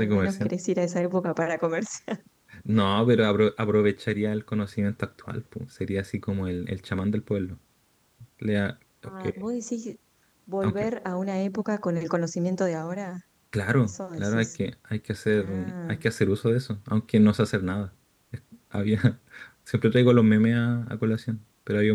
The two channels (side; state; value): both; identical; correlation 1.00